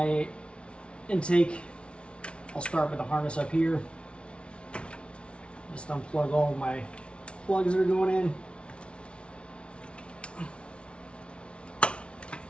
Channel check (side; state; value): right; late; 0.059 ms